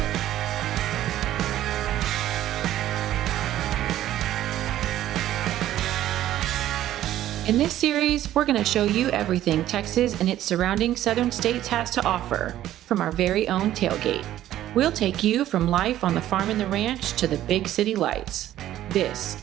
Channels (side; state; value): left; quieter; 13.0 dB